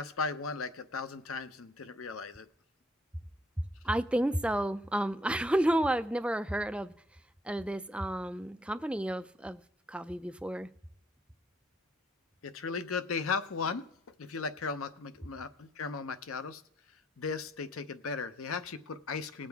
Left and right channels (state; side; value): normal; both; correlation 0.67